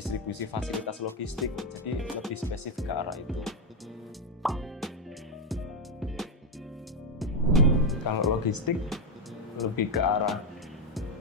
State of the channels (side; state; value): both; normal; correlation 0.06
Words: fasilitas logistik, jadi lebih spesifik ke arah itu. Kalau logistik lebih ke arah